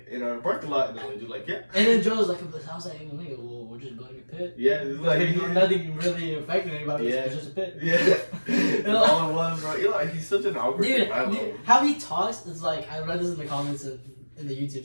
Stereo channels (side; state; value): both; inverted; correlation -1.00